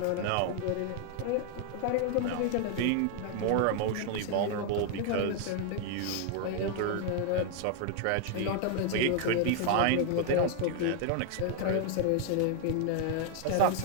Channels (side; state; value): both; different; correlation 0.00